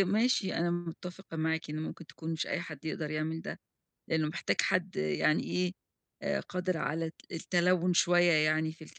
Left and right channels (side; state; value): both; identical; correlation 1.00